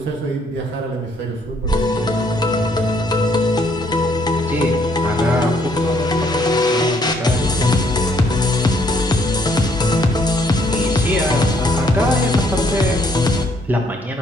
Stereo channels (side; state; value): both; normal; correlation 0.68